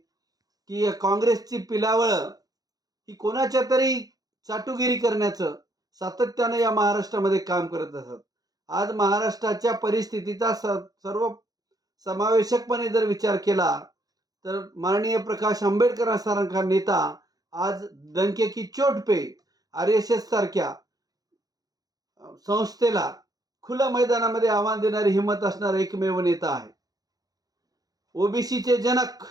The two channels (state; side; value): late; left; 0.18 ms